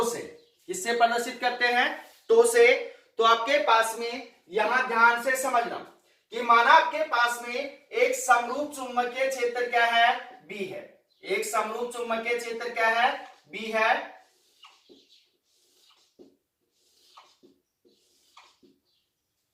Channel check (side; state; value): both; identical; correlation 1.00